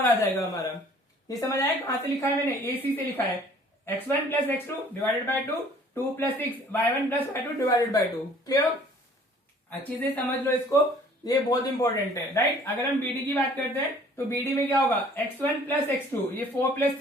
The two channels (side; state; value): both; normal; correlation 0.54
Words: आ जाएगा हमारा। ये समझ आया, कहां से लिखा है मैंने, AC से लिखा है, x1 + x2 divided by 2, 2 + 6 y1 + y2 divided by 2, clear. अच्छी से समझ लो इसको, ये बहुत इंपॉर्टेंट है, राइट। अगर हम BD की बात करते हैं तो BD में क्या होगा, x1 + x2, ये 4 +